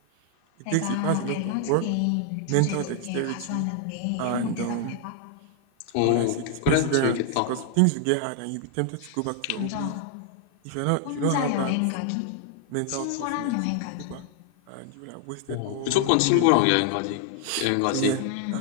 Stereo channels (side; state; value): both; different; correlation 0.00